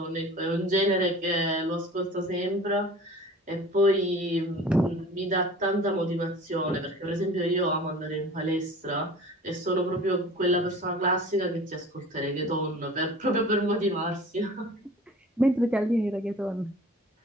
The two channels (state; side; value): normal; both; correlation 0.42